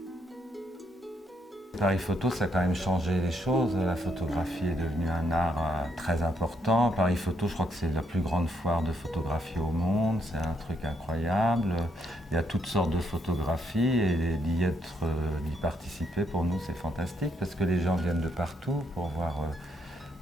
Paris Photo, ça a quand même changé les choses. La photographie est devenue un art très important. Paris Photo, je crois que c'est la plus grande foire de photographie au monde. C'est un truc incroyable. Il y a toutes sortes de photographies et d'y participer, pour nous, c'est fantastique parce que les gens viennent de partout pour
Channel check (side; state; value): both; normal; correlation 0.75